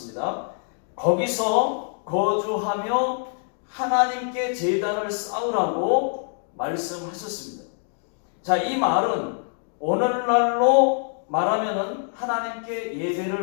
거기서 거주하며 하나님께 제단을 쌓으라고 말씀하셨습니다. 자, 이 말은 오늘날로 말하면은 하나님께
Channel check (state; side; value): silent; right; 56 dB below the other